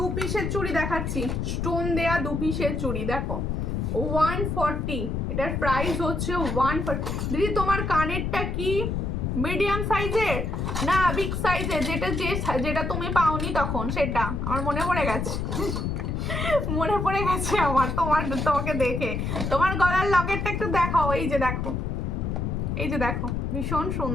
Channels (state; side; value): noise; left; rumble, 1 dB below the sound